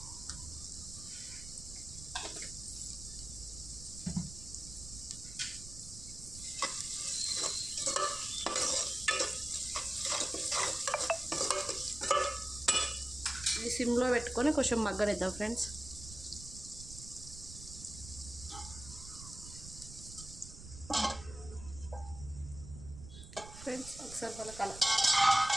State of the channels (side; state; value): right; noise; rumble, 13 dB below the sound